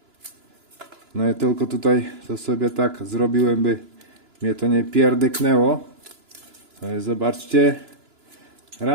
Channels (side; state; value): left; late; 2.9 ms